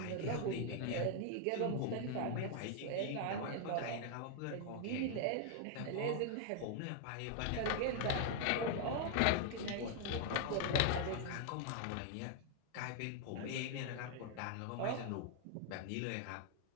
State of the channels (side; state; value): both; different; correlation 0.00